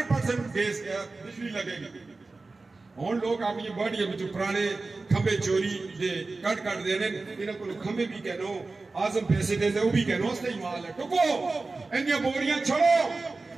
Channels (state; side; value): quieter; left; 3.6 dB